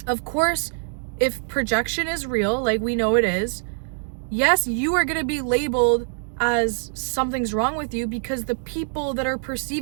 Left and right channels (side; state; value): left; silent; digital silence